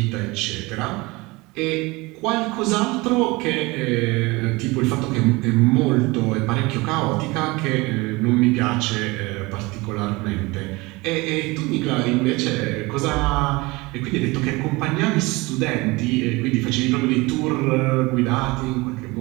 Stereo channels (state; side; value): quieter; left; 23.3 dB